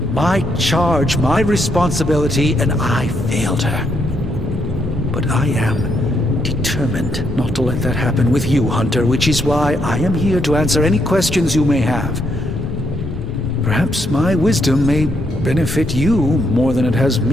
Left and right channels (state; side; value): normal; both; correlation 0.76